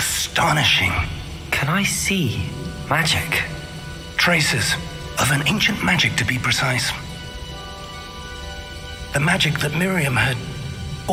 Can I see magic? Traces of an ancient magic, to be precise. The magic that Miriam had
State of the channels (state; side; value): identical; both; correlation 1.00